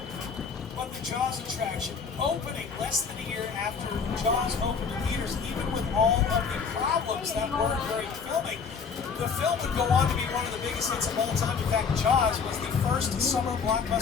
But the Jaws attraction, opening less than a year after Jaws opened in theaters, even with all of the problems that were during filming, the film would go on to be one of the biggest hits of all time. In fact, Jaws was the first summer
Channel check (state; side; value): quieter; right; 5.8 dB